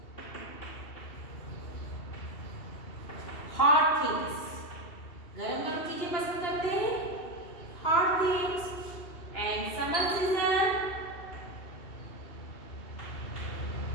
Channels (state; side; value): late; right; 2.7 ms